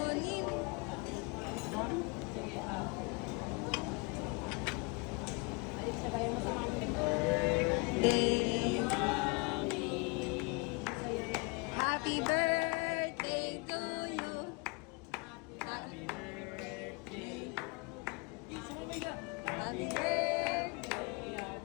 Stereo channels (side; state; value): right; quieter; 30.3 dB